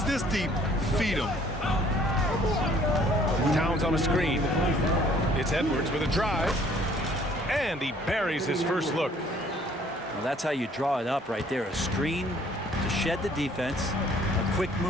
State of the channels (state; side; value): normal; both; correlation 0.59